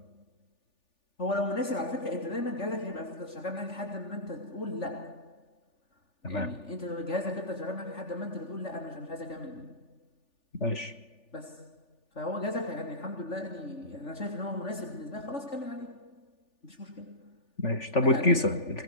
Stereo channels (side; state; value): right; late; 3.4 ms